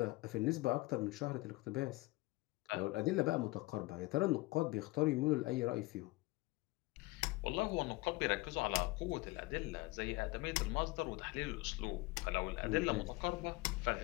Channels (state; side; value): quieter; right; 21.7 dB